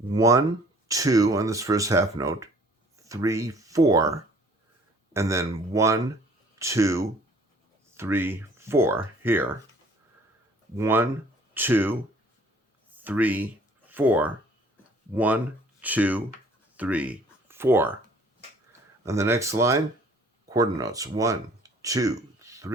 2 on this first half note, 3, 4, and then 1, 2, 3, 4 here. 1, 2, 3, 4. 1, 2, 3, 4. On the next line, quarter notes. 1, 2,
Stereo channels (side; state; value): both; normal; correlation 0.55